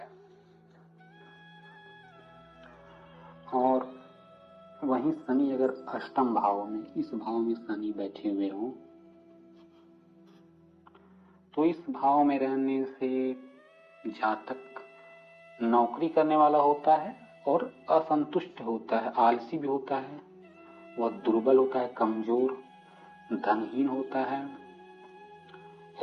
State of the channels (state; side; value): identical; both; correlation 1.00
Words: और वहीं शनि अगर अष्टम भाव में, इस भाव में शनि बैठे हुए हो तो इस भाव में रहने से जातक नौकरी करने वाला होता है और असंतुष्ट होता है, आलसी भी होता है, वह दुर्बल होता है, कमजोर, धनहीन होता है,